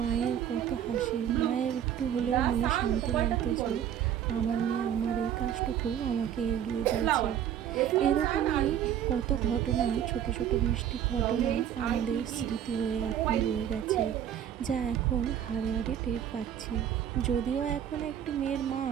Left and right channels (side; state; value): left; quieter; 9.9 dB